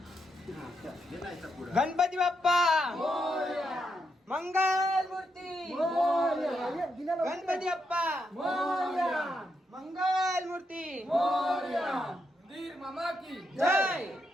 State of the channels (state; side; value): normal; both; correlation 0.81